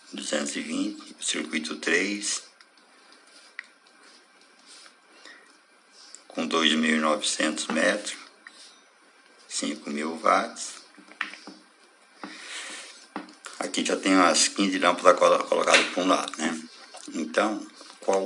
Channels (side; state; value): both; identical; correlation 1.00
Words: 220. O circuito 3, com 2.900 metros, 5.000 watts. Aqui já tem as 15 lâmpadas colocadas para um lado, né? Então, qual